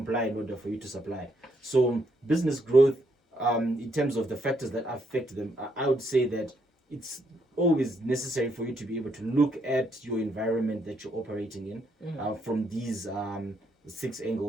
in order for you to supply. So business growth, in terms of the factors that affect them, I would say that it's always necessary for you to be able to look at your environment that you're operating in from these 6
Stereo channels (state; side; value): normal; both; correlation 0.75